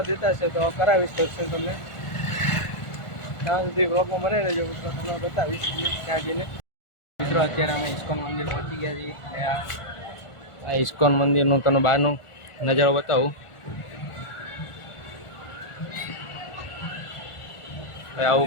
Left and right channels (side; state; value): right; late; 1.4 ms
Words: દેતા હશે તો કરાવીશ દર્શન તમને. ત્યાં સુધી વ્લોગમાં બને રહેજો મિત્રો, તમને બતાવીશ ત્યાં જઈને. મિત્રો અત્યારે અમે ઇસ્કોન મંદિર પહોંચી ગયા છીએ. આ ઇસ્કોન મંદિરનું તમને બહારનું નજારો બતાવું. આવું